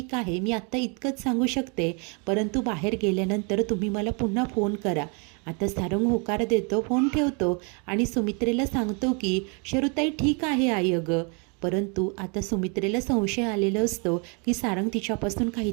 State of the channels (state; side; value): quieter; left; 34.8 dB